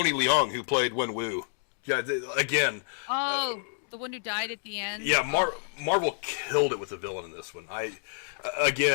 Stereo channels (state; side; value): silent; right; 59 dB below the other